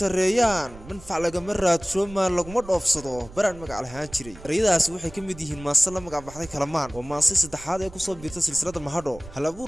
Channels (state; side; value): noise; right; rumble, 17 dB below the sound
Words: منفع لغما رادشو maan laguma dhoofsado baraan magac lahaan jiray erayadaas waxay ka mid yihiin maasala magac baxday kalamaan oo maasay saddexaad ee ku soo biirtay silsilada mahadho hal